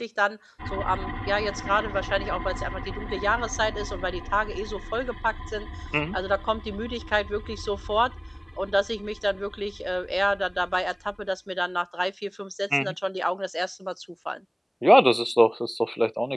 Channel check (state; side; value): identical; both; correlation 1.00